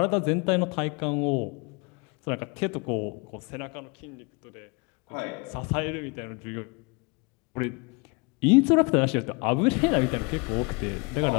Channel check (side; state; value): right; quieter; 30.3 dB